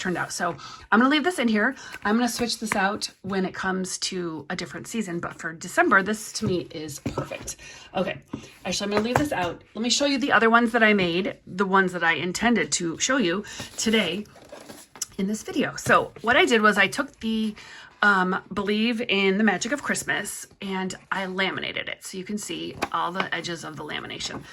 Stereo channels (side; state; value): both; identical; correlation 1.00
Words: out. So I'm gonna leave this in here. I'm gonna switch this out when it comes to a different season, but for December, this to me is perfect. Okay, actually I'm gonna leave this out. Let me show you the other ones that I made, the ones that I intended to show you today in this video. So what I did was I took the Believe in the Magic of Christmas and I laminated it so you can see all the edges of the lamination.